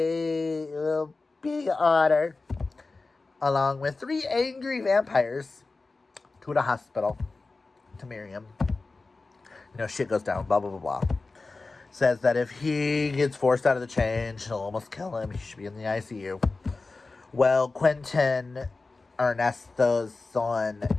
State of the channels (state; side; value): quieter; right; 3.7 dB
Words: otter, along with 3 angry vampires, to the hospital, to Miriam. You know, shit goes down, blah, blah, blah, blah. Says that if he gets forced out of the change, he'll almost kill him. He should be in the ICU. Well, Quentin, Ernesto's son,